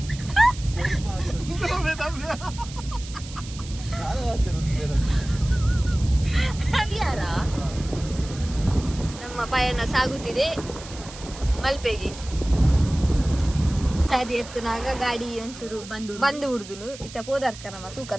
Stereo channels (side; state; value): right; noise; hiss, 15 dB below the sound